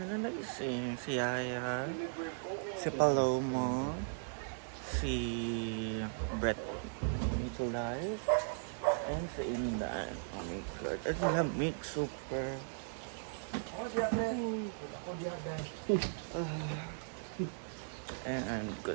nagising. Si Yaya, si Palomo, si Brett Nicolai, and si Indan. Oh my God, at lamig super. And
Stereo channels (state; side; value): silent; left; digital silence